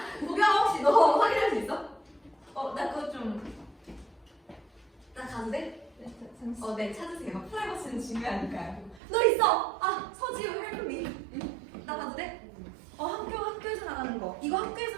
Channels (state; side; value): drops out; left; at 9.0 s